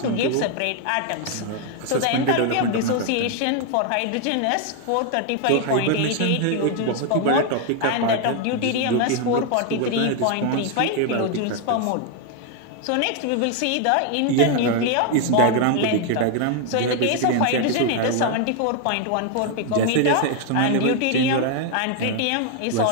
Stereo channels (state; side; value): different; both; correlation 0.01